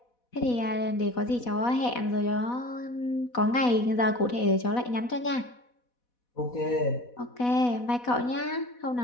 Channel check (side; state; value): right; late; 4.1 ms